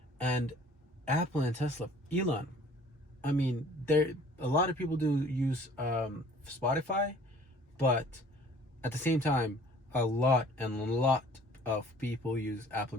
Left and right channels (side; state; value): both; normal; correlation 0.52